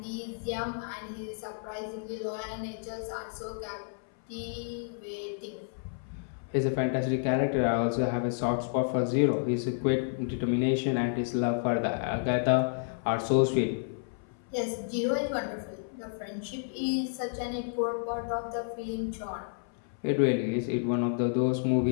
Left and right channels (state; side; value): silent; right; 57 dB below the other